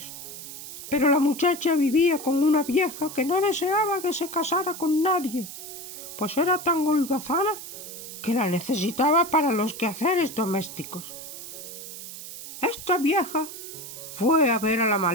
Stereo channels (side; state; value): right; noise; hiss, 11 dB below the sound